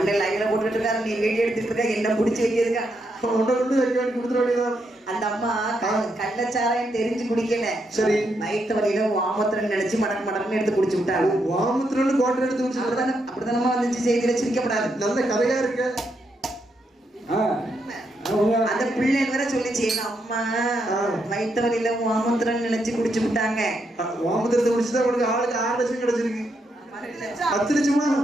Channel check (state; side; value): normal; both; correlation 0.80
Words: லைன்ல போட்டுட்டு இருக்காரு, நீ வீடியோ எடுத்துட்டு இருக்க, என்ன பிடிச்சி வைக்கிறதுக்கா? அந்த அம்மா கள்ளச்சாராயம் தெரிஞ்சு குடிக்கல. சரி. வயிற்று வலியில வாமத்திரன் நினைச்சு மடக்கு எடுத்து குடிச்சு விட்டாங்க. வாமத்திரன் கோட்டை எடுத்து குடிச்சு அப்படிதானமா வந்துச்சு. செய்தியில சிரிக்கப்படாது. நல்ல கதையா இருக்கு. அந்த பிள்ளை வேற சொல்லிச்சு, எங்க அம்மா வயிற்று வலியில வாமத்திரன் நினைச்சு குடிச்சு விட்டாங்க. வாமத்திரத்தை குடிச்சுதான் உனக்கு ஆளுக்கு 6 லட்சம் கிடைச்சிருக்கு. 10 லட்சமா?